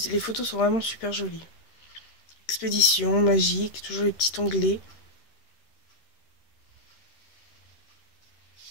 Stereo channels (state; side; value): late; right; 13 ms